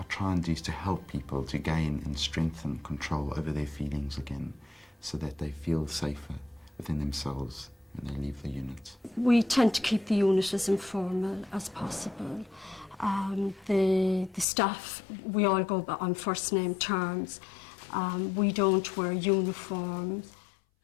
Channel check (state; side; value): drops out; right; at 14.5 s